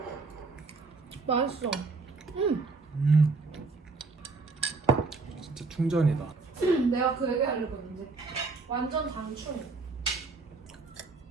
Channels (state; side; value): quieter; left; 4.1 dB